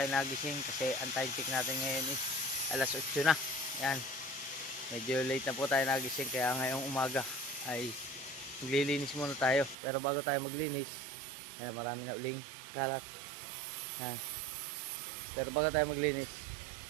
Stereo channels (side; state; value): left; drops out; at 9.8 s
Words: nagising kasi ang time check natin ngayon is alas 8 na. Yan, medyo late na po tayo nagising kaya ngayong umaga ay maglilinis muna tayo. Pero bago tayo maglinis, yan, marami na uling kalat. Yan. Pero bago tayo maglinis,